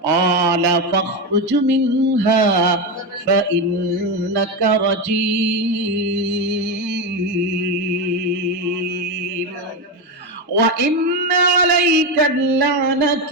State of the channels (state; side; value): normal; both; correlation 0.13